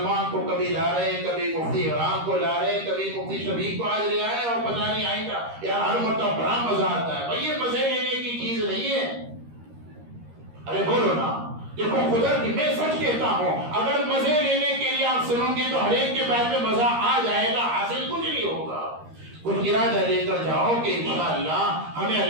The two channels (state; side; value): late; left; 13 ms